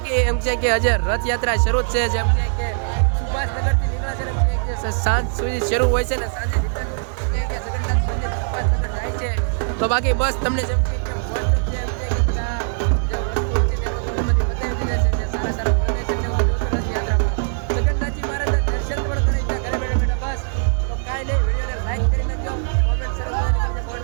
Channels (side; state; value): left; silent; digital silence